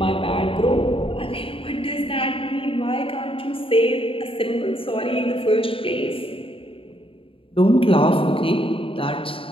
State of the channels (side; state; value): right; late; 0.26 ms